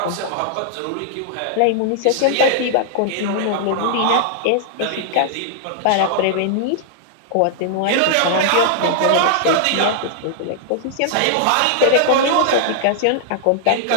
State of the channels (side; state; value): both; different; correlation -0.01